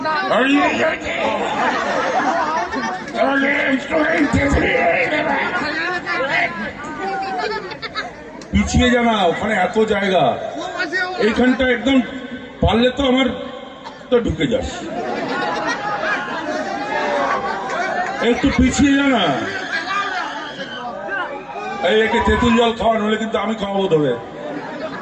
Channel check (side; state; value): both; identical; correlation 1.00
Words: পিছিয়ে জানা, ওখানে এত জায়গা, এইখানটা একদম পারলে তো আমার তো ঢুকে যাস, একটু পিছিয়ে জানা। এই একে তেঁতুল জল খাওয়া, নইলে কিন্তু আমি খাওয়াবো ধরে।